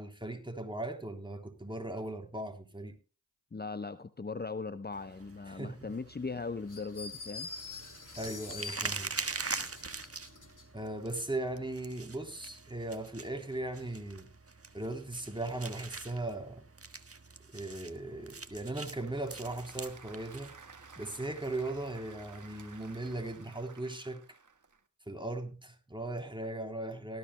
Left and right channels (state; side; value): normal; both; correlation 0.45